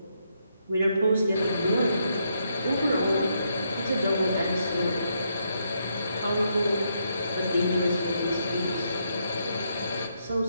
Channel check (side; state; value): both; inverted; correlation -0.77